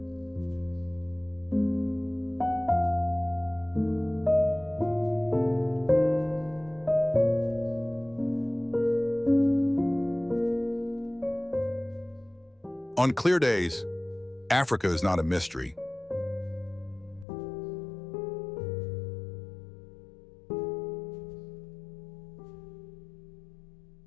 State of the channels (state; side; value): drops out; right; at 17.2 s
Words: On clear days, Africa is not a mystery.